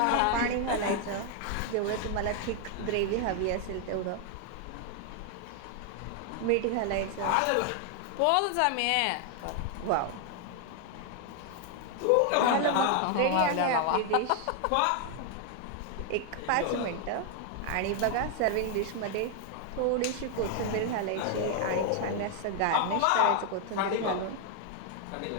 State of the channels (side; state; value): both; different; correlation 0.00